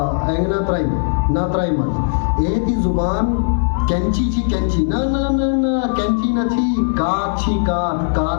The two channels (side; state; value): right; silent; digital silence